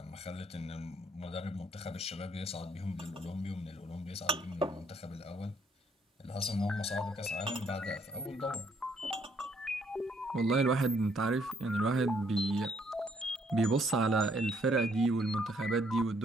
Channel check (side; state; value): both; normal; correlation 0.68